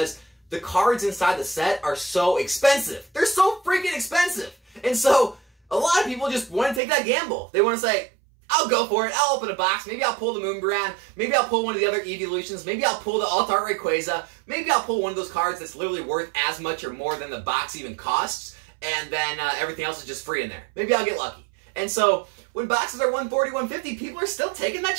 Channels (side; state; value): left; drops out; at 6.8 s